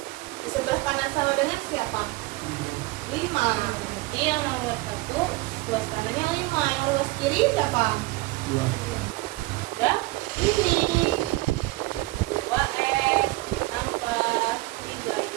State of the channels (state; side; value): quieter; left; 21.5 dB